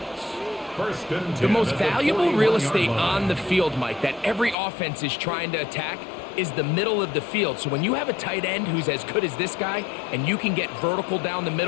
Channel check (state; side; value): drops out; right; at 4.5 s